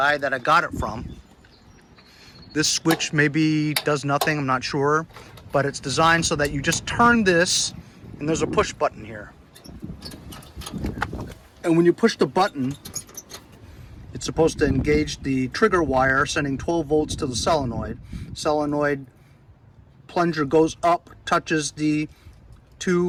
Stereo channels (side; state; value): both; identical; correlation 1.00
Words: that I got it from, this switch maybe does nothing, I'm not sure, but it's designed so that you just turn this and there's a push button here. And when you push the button, it's supposed to engage the trigger wire, sending 12 volts to the solenoid. Solenoid plunger goes up, touches the